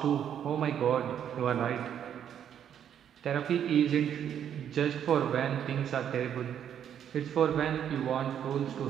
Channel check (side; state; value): left; quieter; 9.3 dB